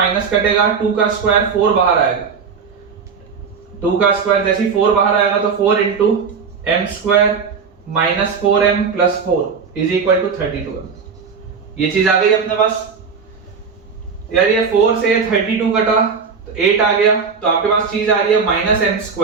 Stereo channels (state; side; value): quieter; left; 5.7 dB